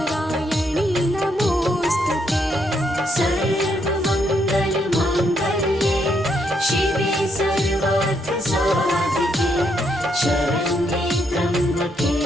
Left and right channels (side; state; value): both; normal; correlation 0.75